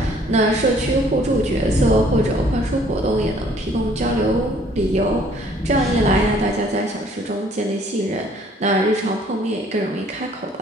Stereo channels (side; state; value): both; normal; correlation 0.59